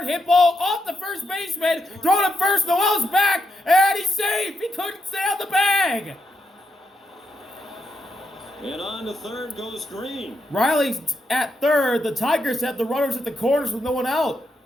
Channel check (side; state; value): both; normal; correlation 0.82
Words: hit ball off the first baseman. Thrown at first, Noel's back, and he's safe. He couldn't stay on the bag. And on to third goes Green. Riley's at third. The Tigers have the runners at the corners with no one out